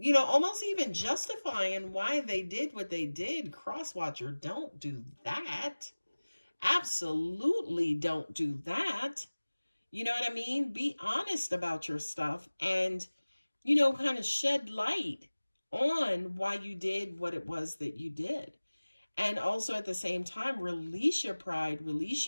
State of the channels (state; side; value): inverted; both; correlation -1.00